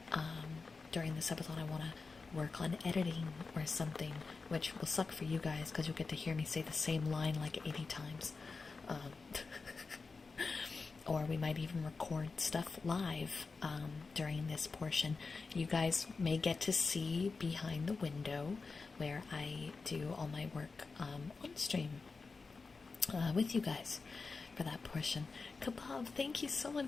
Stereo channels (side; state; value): right; quieter; 4.3 dB